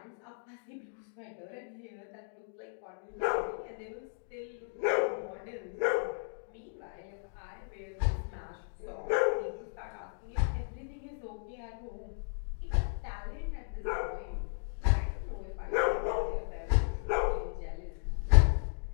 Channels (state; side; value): silent; right; digital silence